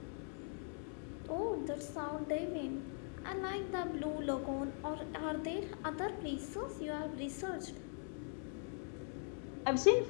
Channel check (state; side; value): silent; right; 50 dB below the other